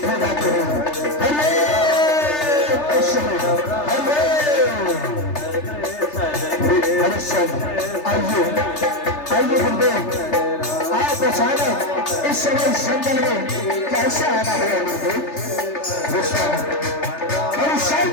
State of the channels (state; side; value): late; right; 3.3 ms